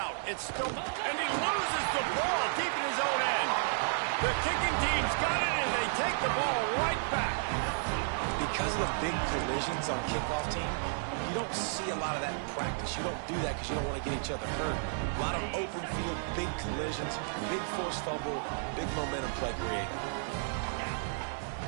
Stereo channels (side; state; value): left; silent; digital silence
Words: It's still, and he loses the ball deep in his own end. The kicking team's got it, and they take the ball right back. Because of the big collisions on kickoff team, you don't see a lot of that in practice. You don't do that because you don't want to get each other hurt. A lot of open field, big collisions, big forced fumble, big momentum play created.